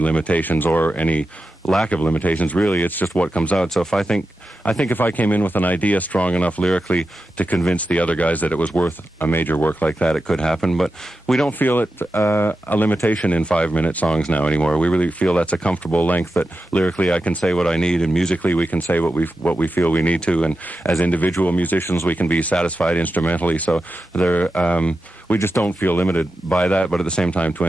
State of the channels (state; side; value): normal; both; correlation 0.91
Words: or any lack of limitations. Really, it's just what comes out. So if I think if I came in with an idea strong enough lyrically to convince the other guys that it was worth a major work like that, it could happen. But we don't feel it a limitation in 5-minute songs now anymore. We really feel that's a comfortable length, that lyrically I can say what I need, and musically we can say what we feel we need to, and as individual musicians we can be satisfied instrumentally. So we just don't feel limited by that. But at the same time, to